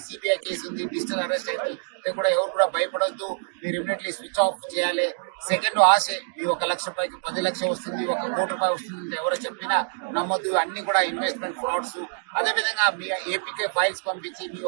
సిబిఐ కేసు ఉంది, డిజిటల్ అరెస్ట్ అయితే కూడా ఎవరు కూడా భయపడొద్దు. మీరు ఇమీడియట్లీ స్విచ్ ఆఫ్ చేయాలి. సెకండ్ ఆశ, మీ 1 లక్ష రూపాయకి 10 లక్షలు వస్తుంది, 1 కోటి రూపాయలు వస్తుంది, ఎవరో చెప్పినా నమ్మొద్దు. అన్ని కూడా ఇన్వెస్ట్మెంట్ ఫ్రాడ్స్. అదేవిధంగా మీ ఏపీకే ఫైల్స్ పంపించి మీ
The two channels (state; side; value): silent; left; digital silence